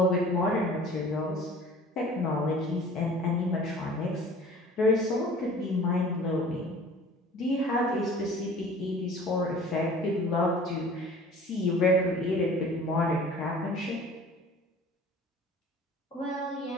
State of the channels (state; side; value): normal; both; correlation 0.46